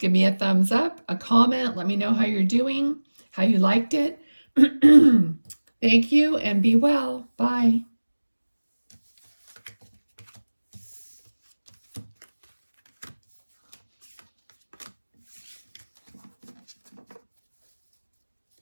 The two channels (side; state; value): both; inverted; correlation -1.00